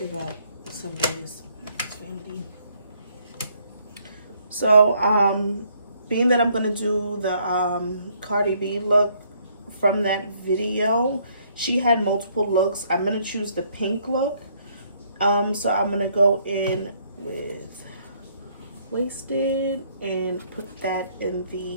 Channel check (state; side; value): inverted; both; correlation -0.67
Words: up some days. It's vanity. So, being that I'm going to do the Cardi B look from that video, she had multiple looks. I'm going to choose the pink look. So I'm going to go in with Wasted and put that in